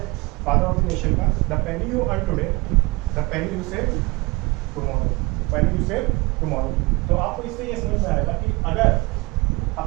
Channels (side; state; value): left; quieter; 24.7 dB